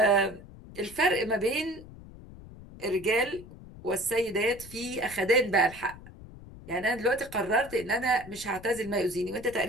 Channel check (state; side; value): noise; left; rumble, 17 dB below the sound